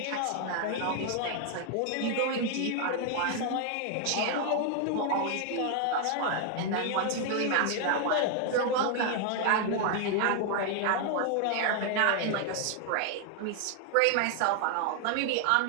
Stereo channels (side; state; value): both; different; correlation 0.00